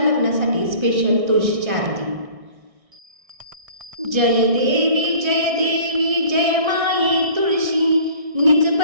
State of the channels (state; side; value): late; left; 1.6 ms